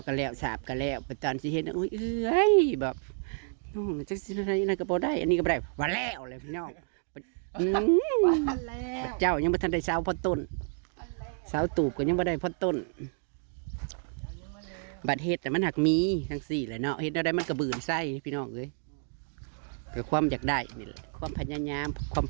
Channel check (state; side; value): silent; left; 58 dB below the other